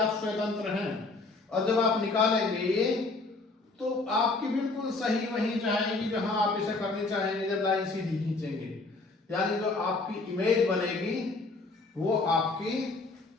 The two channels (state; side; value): quieter; right; 3.5 dB